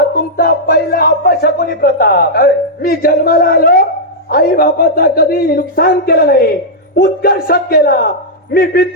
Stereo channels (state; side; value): normal; both; correlation -0.07